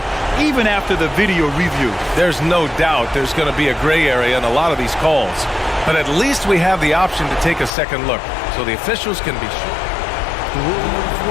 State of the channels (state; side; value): drops out; right; at 7.7 s